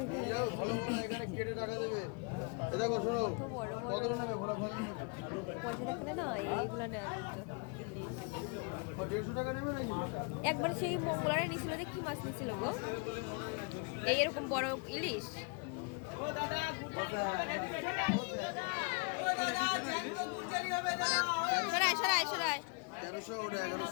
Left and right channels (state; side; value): quieter; right; 34.8 dB